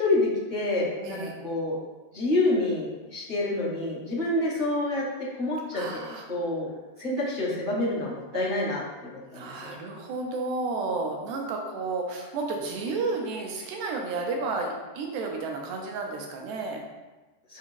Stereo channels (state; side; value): late; left; 14 ms